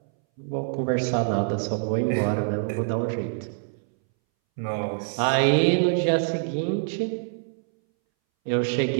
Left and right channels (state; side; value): silent; left; 61 dB below the other